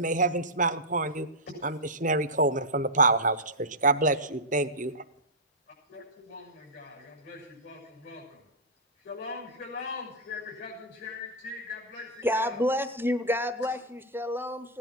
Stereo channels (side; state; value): both; normal; correlation -0.09